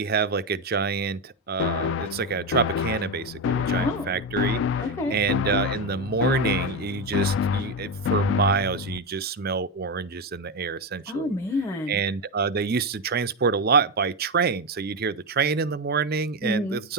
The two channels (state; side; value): normal; both; correlation 0.12